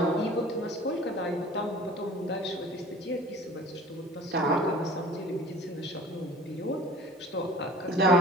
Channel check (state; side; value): normal; both; correlation 0.45